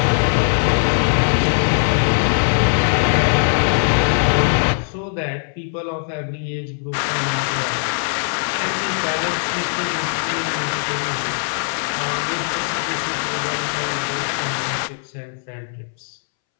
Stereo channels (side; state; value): right; silent; 65 dB below the other